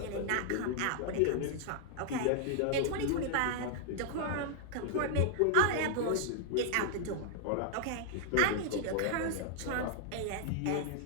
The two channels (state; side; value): different; both; correlation -0.01